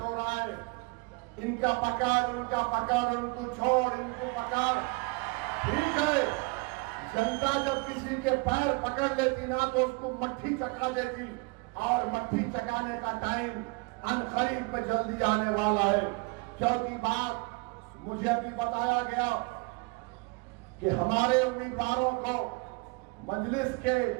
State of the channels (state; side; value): quieter; left; 29.0 dB